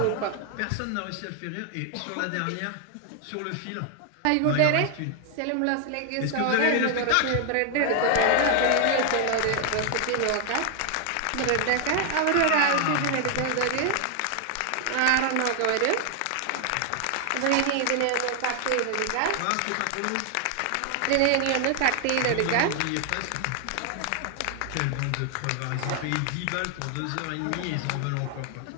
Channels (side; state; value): both; different; correlation 0.00